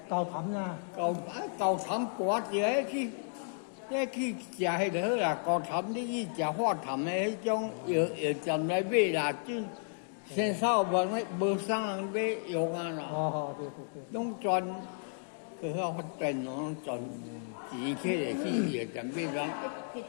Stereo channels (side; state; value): right; silent; digital silence